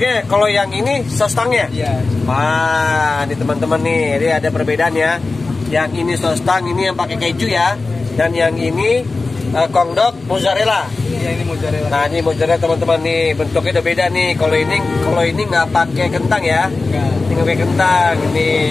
Kalau yang ini sostangnya. Iya. Wah, ini teman-teman nih, ini ada perbedaan ya. Yang ini sostang, ini yang pakai keju ya. Dan yang ini kongdok mozzarella. Iya, ini mozzarella. Nah, ini mozzarella teman-teman nih, bentuknya udah beda nih. Kalau ini nggak pakai kentang ya. Enggak. Ini nggak pakai kentang. Ini,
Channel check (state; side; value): quieter; right; 3.7 dB